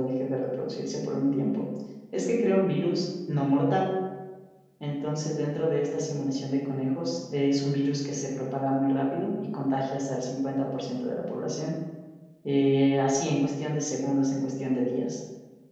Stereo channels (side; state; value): both; identical; correlation 1.00